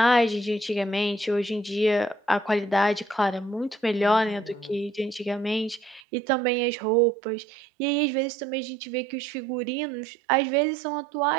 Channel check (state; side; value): drops out; left; at 6.0 s